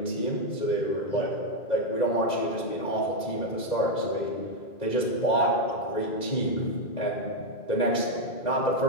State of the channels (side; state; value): right; late; 2.0 ms